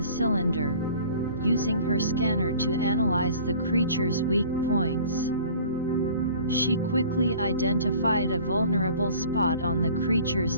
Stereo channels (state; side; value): inverted; both; correlation -0.47